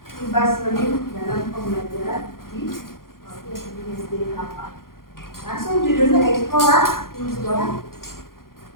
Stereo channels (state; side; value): late; right; 0.92 ms